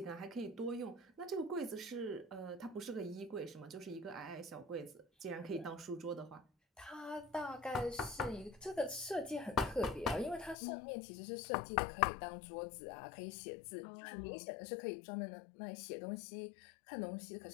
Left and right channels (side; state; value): right; drops out; at 10.6 s